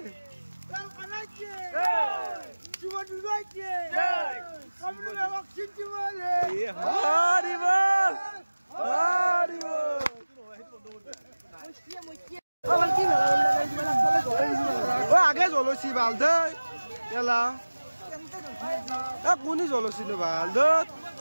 আগে জলছি ভাল দে এলা কোনি জলছি নো ভাল দে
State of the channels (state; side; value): inverted; both; correlation -1.00